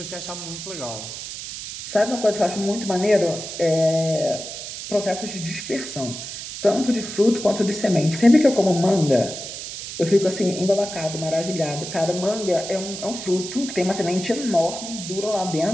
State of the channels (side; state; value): right; noise; hiss, 9 dB below the sound